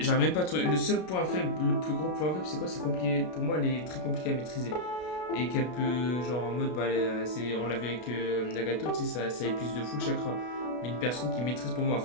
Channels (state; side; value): late; right; 33 ms